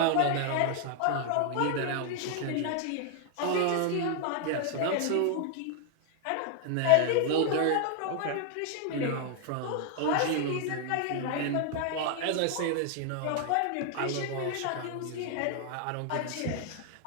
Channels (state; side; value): different; both; correlation 0.00